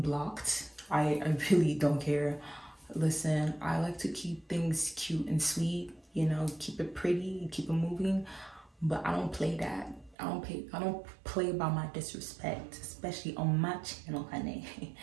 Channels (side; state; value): left; drops out; at 10.2 s